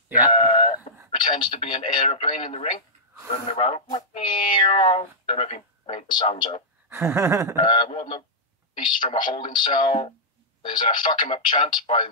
Yeah. Pretends to be an aeroplane in the ring, running around. Don't know if he made the sounds out. Wardlow released from a holding cell. There's a fuck him up chant by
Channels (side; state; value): both; normal; correlation -0.12